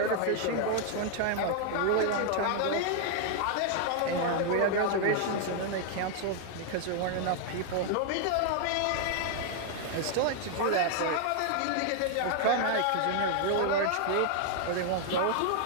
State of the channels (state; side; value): different; both; correlation 0.00